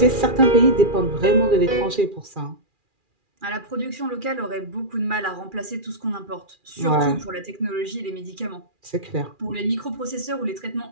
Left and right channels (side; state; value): left; late; 2.4 ms